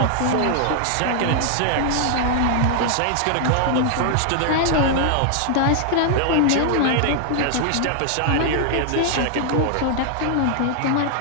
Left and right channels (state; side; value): different; both; correlation 0.00